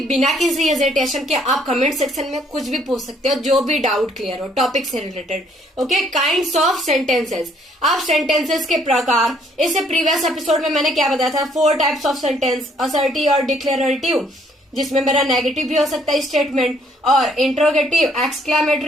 बिना किसी हेजिटेशन के आप कमेंट सेक्शन में कुछ भी पूछ सकते हो, जो भी डाउट क्लियर हो टॉपिक से related. Okay, kinds of sentences. अब सेंटेंसेस के प्रकार, इससे प्रीवियस एपिसोड में मैंने क्या बताया था? 4 टाइप्स ऑफ सेंटेंस, असर्टिव और डिक्लेरेटिव, जिसमें मेरा नेगेटिव भी हो सकता है स्टेटमेंट, और इंट्रोगेटिव,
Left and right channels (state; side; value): normal; both; correlation 0.65